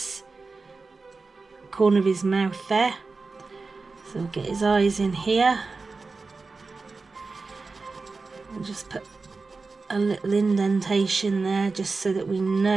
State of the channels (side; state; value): left; quieter; 4.0 dB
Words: corner of his mouth there, so we'll get his eyes in here and just put a little indentation there just so that we